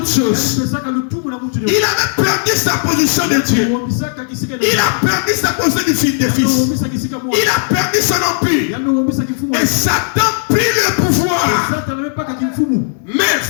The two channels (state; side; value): silent; right; 60 dB below the other